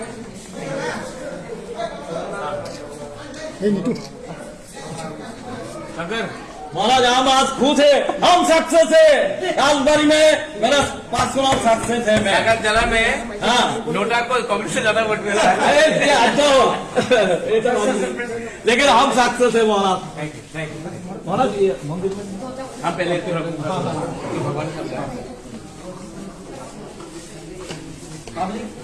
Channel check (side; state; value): both; identical; correlation 1.00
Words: अगर महाराज हम आज खुश है, हम सक्सेस है। आज बारी में मेरा 5 चुनाव सक्सेस है। मैं अगर जला में हाँ नोटा को कांग्रेस से ज्यादा वोट मिला है लेकिन हम सक्सेस है महाराज। महाराज ये मंदिर में हम पहले